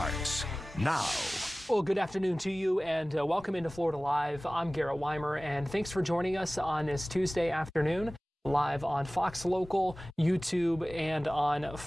now. Well, good afternoon to you and welcome into Florida Live. I'm Garrett Weimer, and thanks for joining us on this Tuesday afternoon, live on Fox Local, YouTube, and on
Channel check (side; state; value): both; normal; correlation 0.98